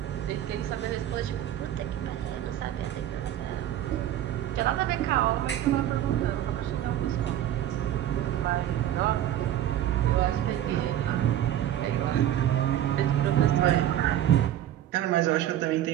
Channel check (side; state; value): left; quieter; 11.8 dB